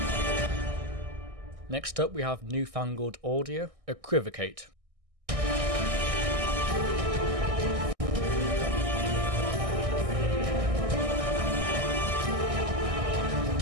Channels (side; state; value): left; late; 1.6 ms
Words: Next up we have Newfangled Audio, Equivocate.